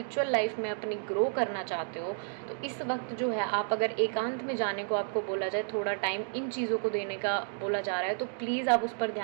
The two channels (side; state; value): left; silent; 57 dB below the other